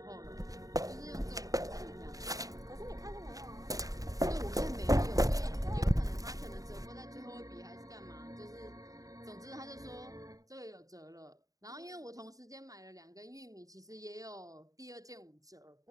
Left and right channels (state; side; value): late; left; 0.17 ms